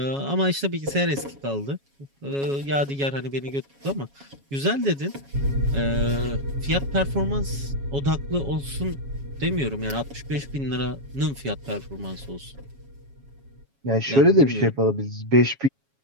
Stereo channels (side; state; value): left; late; 7.2 ms